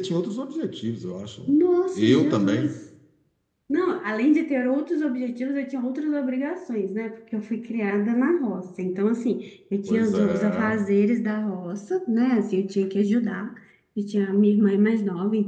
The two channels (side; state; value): both; identical; correlation 1.00